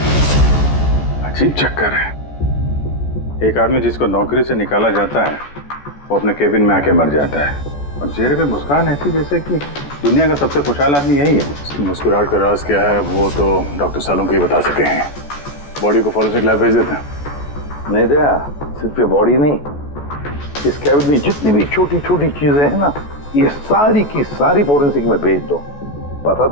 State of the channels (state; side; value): late; right; 14 ms